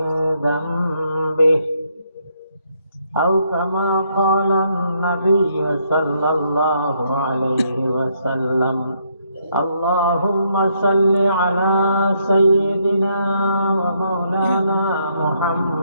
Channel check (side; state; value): both; inverted; correlation -0.73